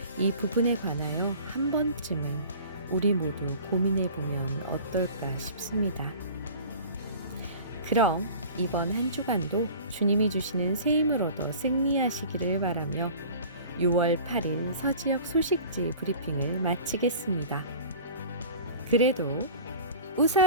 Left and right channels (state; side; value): inverted; both; correlation -0.42